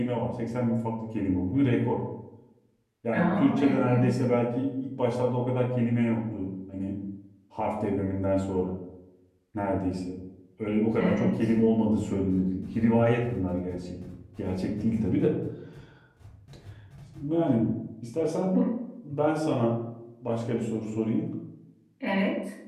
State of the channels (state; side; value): identical; both; correlation 1.00